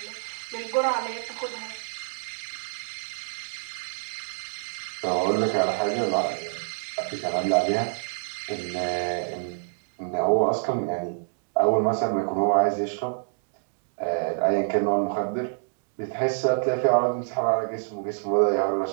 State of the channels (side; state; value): left; silent; digital silence